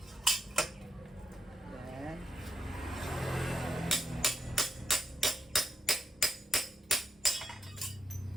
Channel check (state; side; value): normal; both; correlation 0.82